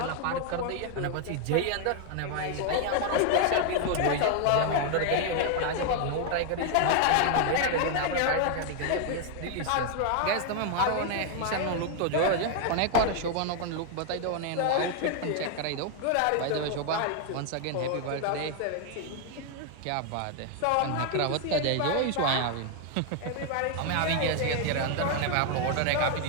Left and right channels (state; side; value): different; both; correlation 0.01